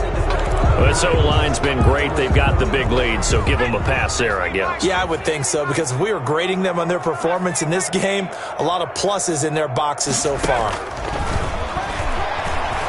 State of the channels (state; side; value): identical; both; correlation 1.00